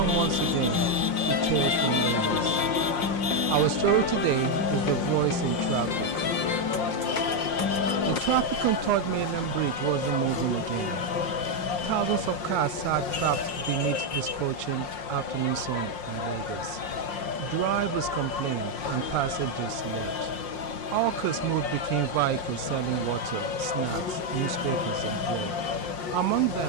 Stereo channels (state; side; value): late; right; 5.6 ms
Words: once again to Tales from Lagos. Our story today is The Voice in Traffic. The traffic on Third Mainland Bridge wasn't moving again. Thousands of cars sat trapped beneath the scorching afternoon sun in Lagos. Drivers complained and passengers slept. Hawkers moved between vehicles selling water, snacks, newspapers and bread. Among them